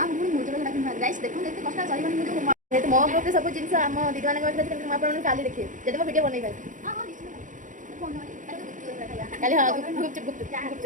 मुनी मूल जब डाकिन गाइस देखो एते कष्ट सही माने मुझे तो मो ग्रुप सब जिंस हम दीदी माने कहले हम आपन काली देखिए जदि मो वीडियो बनै पाइ हां हां निश्चित फोन काली हां गुप जा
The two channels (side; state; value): left; late; 0.37 ms